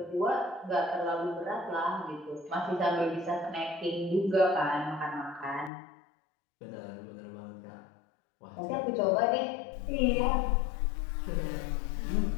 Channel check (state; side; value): drops out; right; at 5.7 s